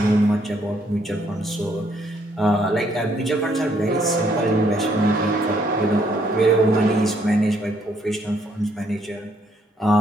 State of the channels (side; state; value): both; normal; correlation 0.69